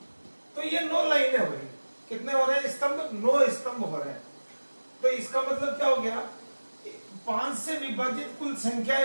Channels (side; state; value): both; inverted; correlation -1.00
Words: तो ये 9 लाइनें हो रही। कितने हो रहे हैं स्तंभ? 9 स्तंभ हो रहे हैं। तो इसका मतलब क्या हो गया? 5 से विभाजित कुल